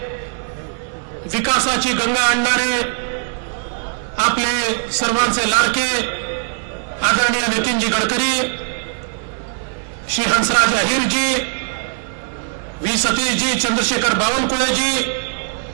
विकासाची गंगा आणणारे आपले सर्वांचे लाडके आदरणीय नितीनजी गडकरी, श्री हंसराज अहिरजी, व्ही सतीशजी, चंद्रशेखर बावनकुळेजी,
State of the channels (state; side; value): silent; left; digital silence